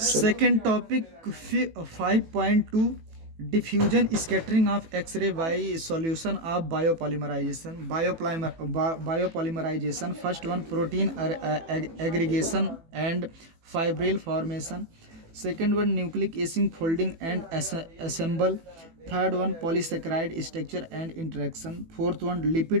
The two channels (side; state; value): left; late; 18 ms